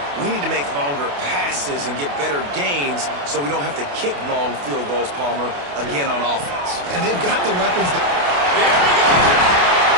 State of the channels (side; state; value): left; late; 28 ms